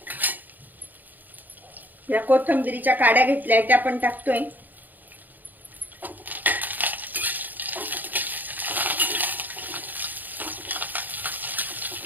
या कोथिंबीरीच्या काड्या घेतल्या त्या पण टाकतोय.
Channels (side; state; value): left; late; 0.085 ms